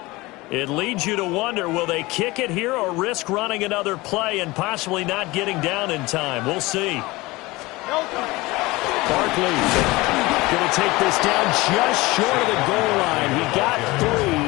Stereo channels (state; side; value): quieter; right; 21.4 dB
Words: It leads you to wonder, will they kick it here or risk running another play and possibly not getting down in time? We'll see. Barkley going to take this down just short of the goal line. He got